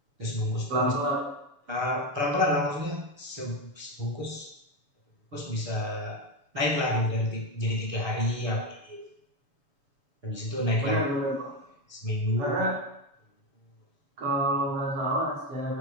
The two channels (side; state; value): left; late; 7.0 ms